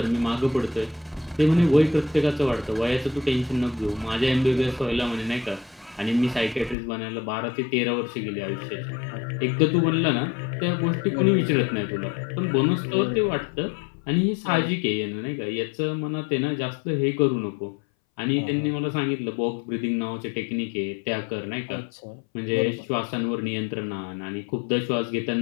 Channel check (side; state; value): right; drops out; at 6.8 s